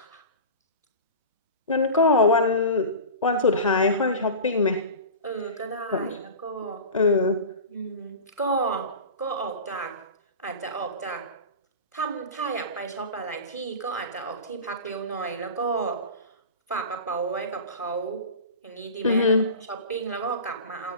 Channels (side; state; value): both; inverted; correlation -0.32